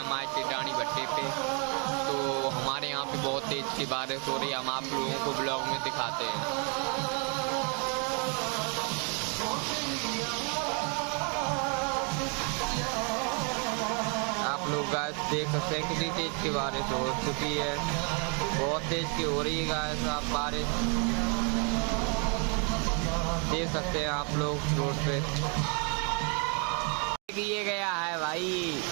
टिटानी भट्टे पे, तो हमारे यहाँ पे बहुत तेज की बारिश हो रही है। हम आप लोगों को ब्लॉग में दिखाते हैं। आप लोग गाइस देख सकते हैं कितनी तेज की बारिश हो चुकी है, बहुत तेज की हो रही है गाइस। आप बारिश देख सकते हैं आप लोग रोड पे। ये गया है भाई,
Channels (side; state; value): left; quieter; 36.9 dB